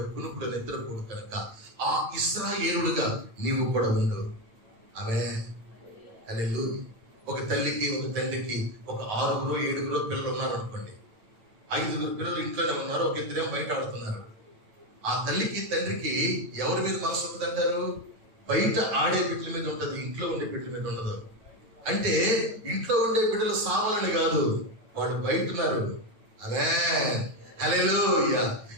కునుకుడు నిద్రపోడు కనుక ఆ ఇశ్రాయేలుడుగా నీవు కూడా ఉండు. హల్లెలూయా. ఒక తల్లికి, ఒక తండ్రికి ఒక 6 7 పిల్లలు ఉన్నారు అనుకోండి. 5 పిల్లలు ఇంట్లోనే ఉన్నారు, ఒక 2 బయట ఆడుతున్నారు. ఆ తల్లికి తండ్రికి ఎవరి మీద మనసు ఉంటుందంటారు? బయట ఆడే బిడ్డల మీద ఉంటుంది, ఇంట్లో ఉండే బిడ్డల మీద ఉండదు. అంటే ఇంట్లో ఉండే బిడ్డలు సావాలని కాదు, వాడు బయట ఉన్నారు. హల్లెలూయా.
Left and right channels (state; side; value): late; left; 8.9 ms